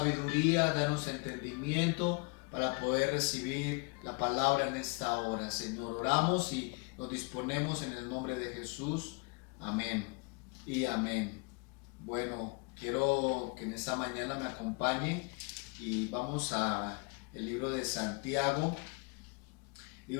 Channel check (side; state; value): right; quieter; 30.7 dB